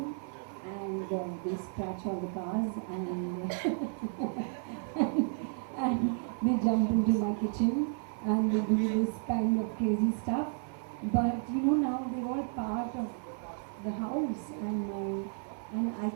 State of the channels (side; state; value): left; silent; 56 dB below the other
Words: and they scratch all the cars and, and they jump into my kitchen and they do this kind of crazy stuff. But you know, now they're all part of the house, and I